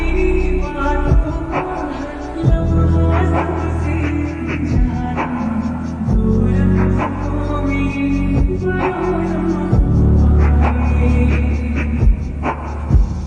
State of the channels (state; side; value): identical; both; correlation 1.00